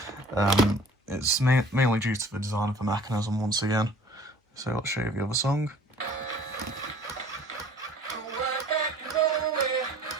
It's mainly due to the design of the mechanism once again. So let's show you the other song.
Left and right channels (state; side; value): normal; both; correlation 0.51